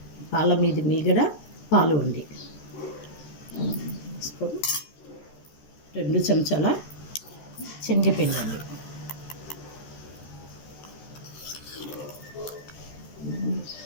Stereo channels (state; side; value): late; right; 13 ms